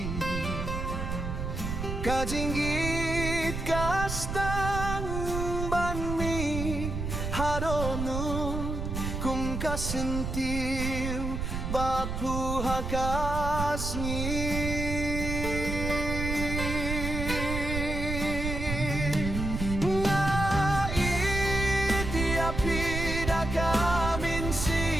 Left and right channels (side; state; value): right; noise; rumble, 3 dB below the sound